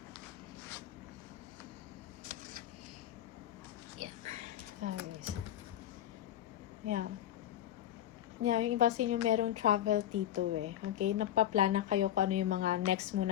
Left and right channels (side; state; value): right; quieter; 11.9 dB